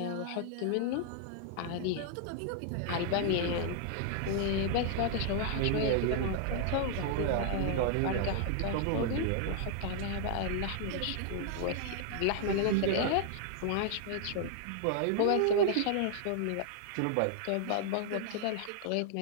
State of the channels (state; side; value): different; both; correlation 0.00